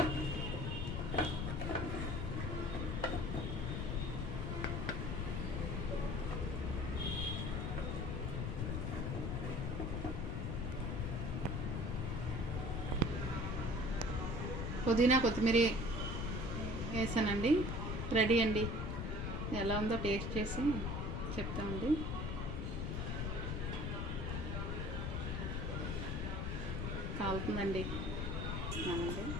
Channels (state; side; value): noise; left; rumble, 1 dB below the sound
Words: పుదీనా కొత్తిమీర వేసానండి. రెడీ అండి. ఎలా ఉందో టేస్ట్ చేసి చెప్తామండి. కాలుతుందండి.